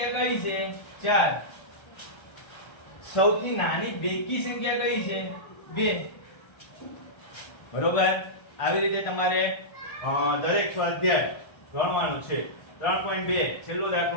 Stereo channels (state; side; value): late; right; 1.3 ms